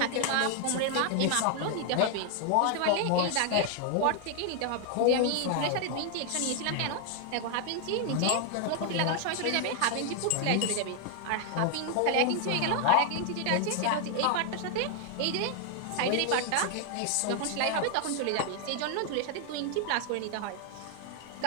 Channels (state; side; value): different; both; correlation 0.00